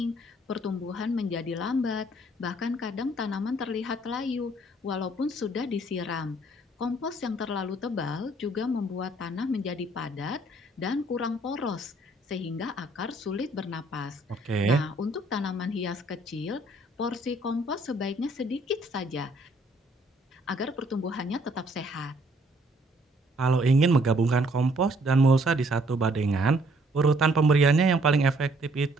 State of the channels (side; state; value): both; normal; correlation 0.64